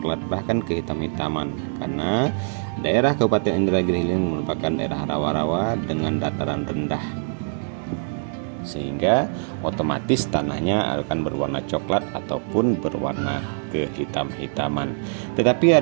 bahkan kehitam-hitaman, karena daerah Kabupaten Indragiri Hilir merupakan daerah rawa-rawa dengan dataran rendah, sehingga otomatis tanahnya akan berwarna coklat ataupun berwarna kehitam-hitaman. Tetapi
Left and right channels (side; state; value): left; silent; digital silence